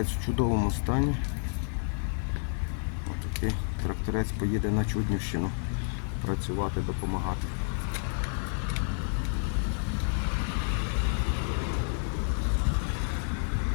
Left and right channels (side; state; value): right; silent; 58 dB below the other